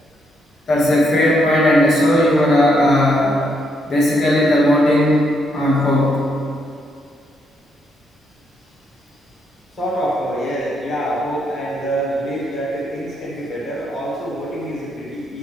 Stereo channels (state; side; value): normal; both; correlation 0.76